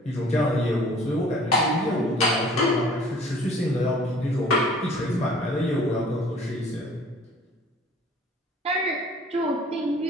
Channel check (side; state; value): both; normal; correlation 0.51